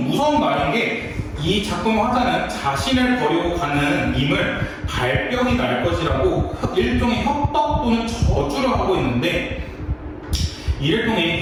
무서운 말인 게 이 작품 화자는 자신을 버리고 가는 임을 발병이 날 것이라고 일종의 협박 또는 저주를 하고 있는데 이를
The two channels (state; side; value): identical; both; correlation 1.00